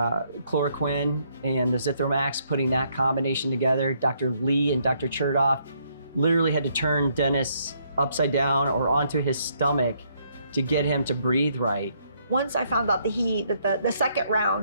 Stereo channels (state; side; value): inverted; both; correlation -0.71